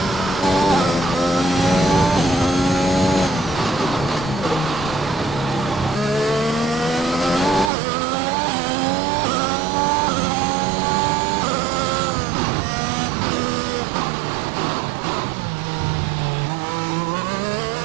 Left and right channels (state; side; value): drops out; left; at 7.7 s